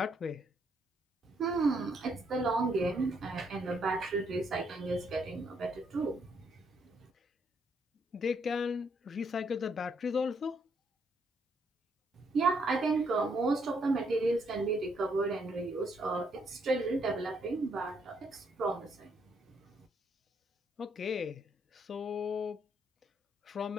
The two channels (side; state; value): both; normal; correlation 0.73